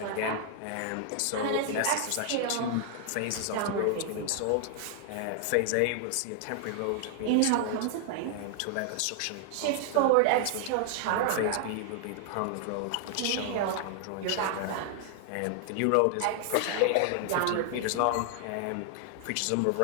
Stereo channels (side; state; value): both; different; correlation 0.00